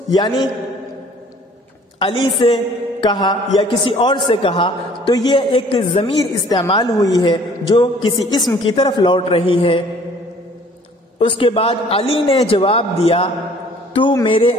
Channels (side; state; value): both; normal; correlation 0.55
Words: یعنی علی سے کہا یا کسی اور سے کہا تو یہ ایک ضمیر استعمال ہوئی ہے جو کسی اسم کی طرف لوٹ رہی ہے۔ اس کے بعد علی نے جواب دیا تو میرے